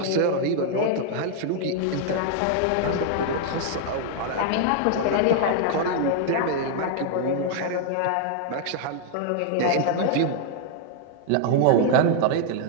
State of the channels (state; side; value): different; both; correlation 0.00